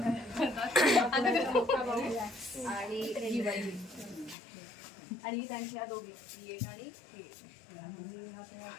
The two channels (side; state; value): right; drops out; at 4.4 s